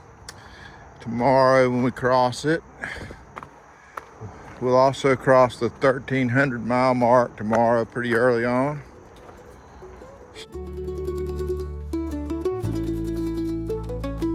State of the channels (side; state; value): both; identical; correlation 1.00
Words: tomorrow when we cross it. We'll also cross the 1,300 mile mark tomorrow pretty early on.